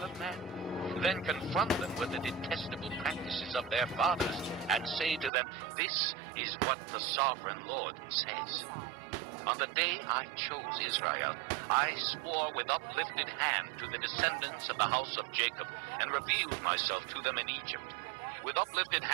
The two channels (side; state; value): left; drops out; at 5.3 s